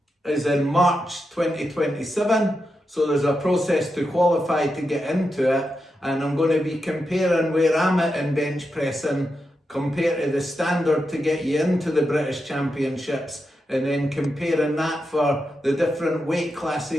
is in March 2027. So there's a process to qualify to get into it, and I'm going to be comparing where I'm at in bench pressing compared to the standard to get you into the British Championships, and then comparing that for the different weight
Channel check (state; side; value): normal; both; correlation 0.87